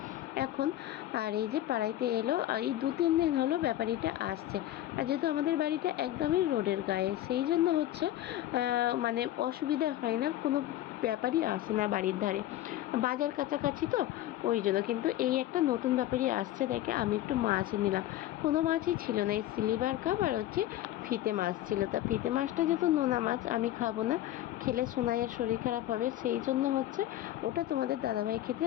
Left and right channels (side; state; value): right; quieter; 13.8 dB